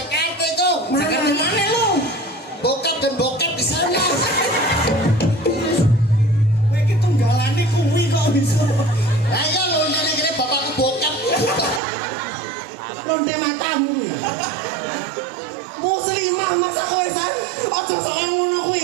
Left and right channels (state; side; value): drops out; left; at 11.8 s